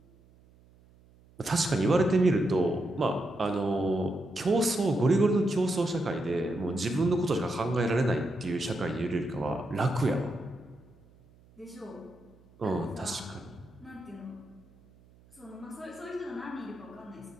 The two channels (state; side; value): noise; right; hum, 28 dB below the sound